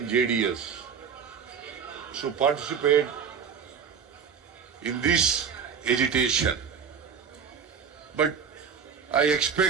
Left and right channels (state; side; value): quieter; left; 6.7 dB